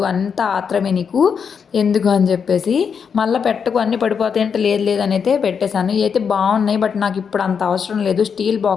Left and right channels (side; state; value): right; quieter; 6.6 dB